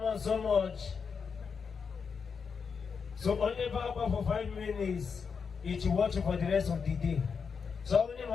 so much. So only back for 5 minutes, each watch for the rest of the day. So only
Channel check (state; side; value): quieter; right; 5.8 dB